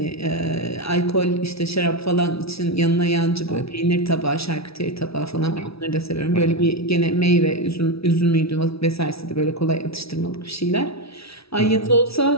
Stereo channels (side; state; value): right; late; 0.76 ms